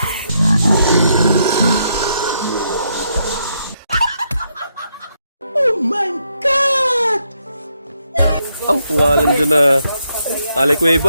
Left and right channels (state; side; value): inverted; both; correlation -0.77